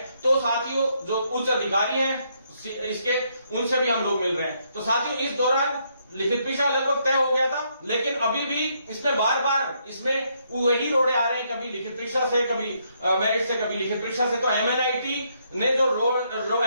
तो साथियों जो उच्च अधिकारी हैं इसके, उनसे भी हम लोग मिल रहे हैं। तो साथियों इस दौरान लिखित परीक्षा लगभग तय हो गया था, लेकिन अभी भी इसमें बार बार इसमें वही रोड़े आ रहे हैं, कभी लिखित परीक्षा से, कभी मेरिट से, कभी लिखित परीक्षा से। तो एमएनआईटी ने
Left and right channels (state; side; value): inverted; both; correlation -0.74